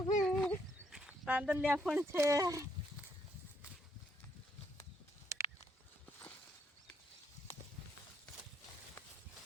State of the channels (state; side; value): normal; both; correlation 0.73